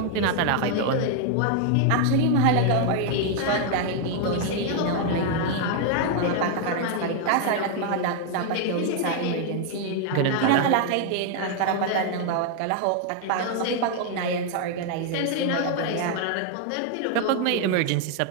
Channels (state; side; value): different; both; correlation 0.00